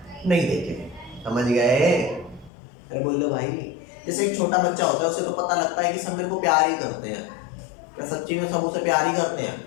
नहीं देखे, समझ गए? अरे बोल दो भाई, जैसे एक छोटा बच्चा होता है, उसे तो पता लगता है कि सब मेरे को प्यार ही करते हैं। क्या सच्ची में सब उसे प्यार ही करते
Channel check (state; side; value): drops out; right; at 2.5 s